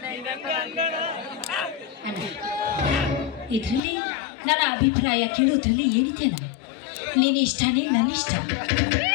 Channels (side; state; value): right; drops out; at 3.8 s